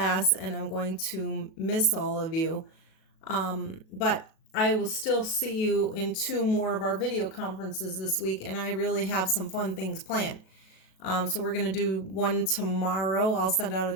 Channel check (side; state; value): right; late; 37 ms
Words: and I'm going to miss all of you. But I will still see you in two more of our video conferences this week, and I really have some fun things planned. So we're going to do one tomorrow. I'll send out a